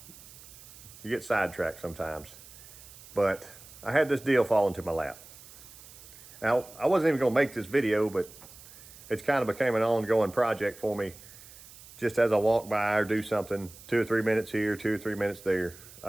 you get sidetracked sometimes. But I had this deal fall into my lap. Now, I wasn't even going to make this video, but it's kind of became an ongoing project for me. Just as I walk by or do something, 2 or 3 minutes here, 2 or 3 minutes there.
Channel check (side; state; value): right; noise; hiss, 19 dB below the sound